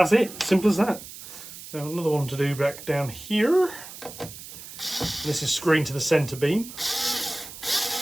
it, simple as that. So another one to do back down here. This is screwing to the centre beam.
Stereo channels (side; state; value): right; noise; hiss, 14 dB below the sound